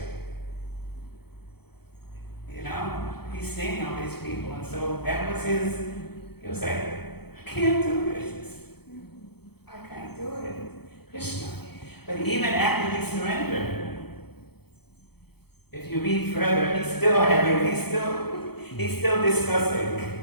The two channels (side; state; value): right; late; 0.97 ms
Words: You know, he's seeing all these people, and so that was he was like, I can't do this. I can't do it. Krishna. But even after he surrendered, if you read further, he's still He's still